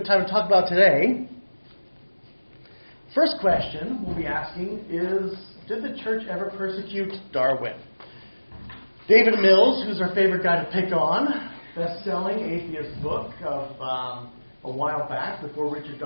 time to talk about today. First question we'll be asking is, did the church ever persecute Darwin? David Mills, who's our favorite guy to pick on, best-selling atheist book of a while back, before Richard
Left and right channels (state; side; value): inverted; both; correlation -1.00